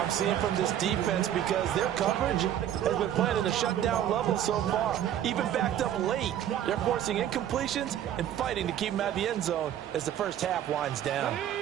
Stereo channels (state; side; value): quieter; left; 10.9 dB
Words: seeing from this defense, because their coverage has been playing at a shutdown level so far. Even backed up late, they're forcing incompletions and fighting to keep them out of the end zone as the first half winds down.